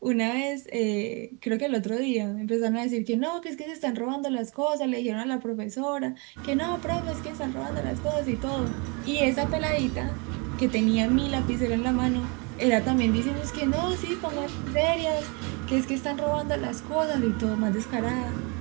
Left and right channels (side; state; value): left; quieter; 31.6 dB